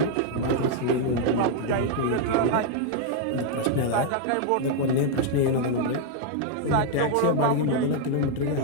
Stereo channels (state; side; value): different; both; correlation 0.00